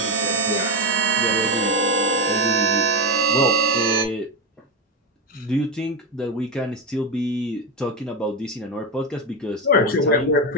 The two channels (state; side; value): normal; both; correlation 0.12